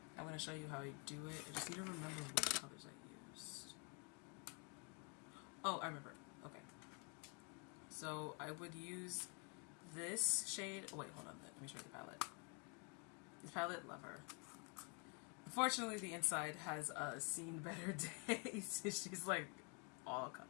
I'm going to show you how I do it. I just need to remember which colors I used. Oh, I remember. Okay. So I would use this shade. Oh, wait, hold on. Let me show you the palette. This palette, love her. Unfortunately, the inside has seen better days. She's like all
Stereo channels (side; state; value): right; quieter; 35.9 dB